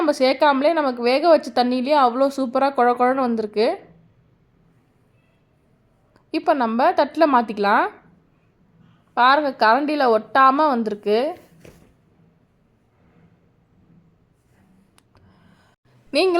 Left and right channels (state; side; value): identical; both; correlation 1.00